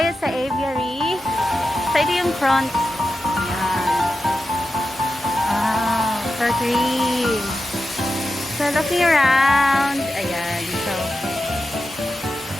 sa Aviary. So, ito yung front. Ayan. Wow, so green. So, looking around. Ayan. So,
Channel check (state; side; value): normal; both; correlation 0.91